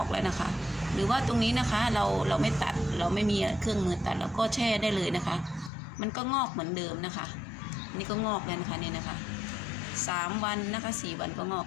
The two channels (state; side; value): drops out; right; at 5.7 s